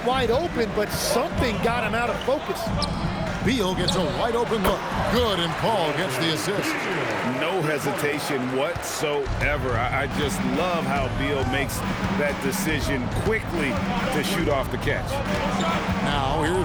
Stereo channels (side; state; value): both; identical; correlation 1.00